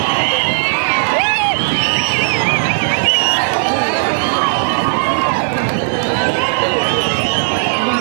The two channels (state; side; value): silent; left; 64 dB below the other